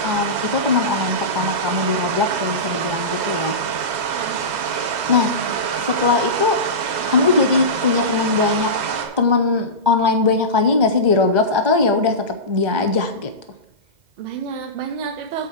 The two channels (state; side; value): late; left; 2.0 ms